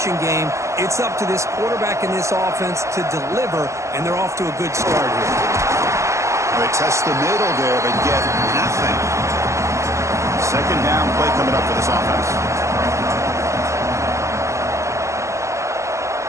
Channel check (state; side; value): late; left; 0.14 ms